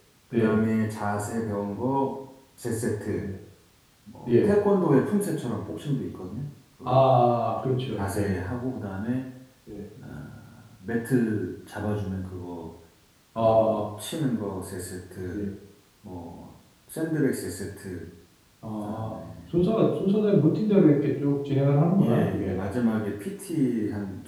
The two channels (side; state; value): both; identical; correlation 1.00